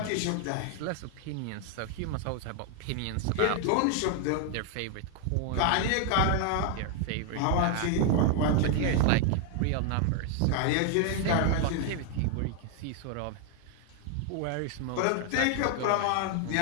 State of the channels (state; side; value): different; both; correlation 0.00